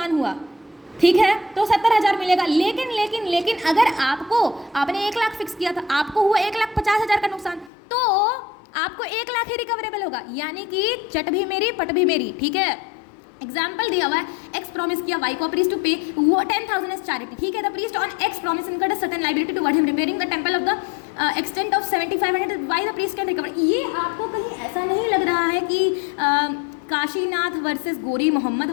हुआ. ठीक है, तो 70,000 मिलेगा. लेकिन अगर आपने 1 लाख फिक्स किया था, आपको हुआ 1,50,000 का नुकसान, तो आपको 1 लाख ही रिकवरेबल होगा. यानी कि चट भी मेरी पट भी मेरी. ठीक है, एग्जाम्पल दिया हुआ है, एक्स प्रॉमिस किया वाई को प्रीस्ट टू पे 10,000 एज चैरिटी. ठीक है, the priest on x promise incurred a certain liability toward him repairing the temple of the extent of 7,500 why the priest can recover. ये आपको कहीं ऐसा नहीं लग रहा है कि काशीनाथ वर्सेस गोरी मोहम्मद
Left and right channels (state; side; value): drops out; right; at 7.7 s